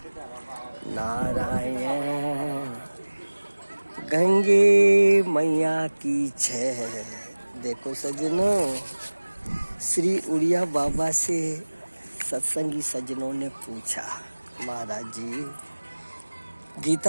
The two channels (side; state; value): both; inverted; correlation -1.00